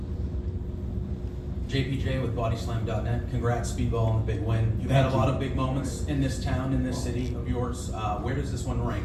JPJ with BodySlam.net. Congrats, Speedball, on the big win. You've had a lot of big moments in this town, in this city of yours. Where does this one rank?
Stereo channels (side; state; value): both; identical; correlation 1.00